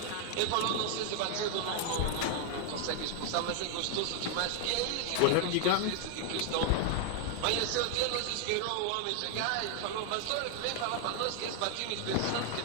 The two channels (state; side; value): different; both; correlation 0.00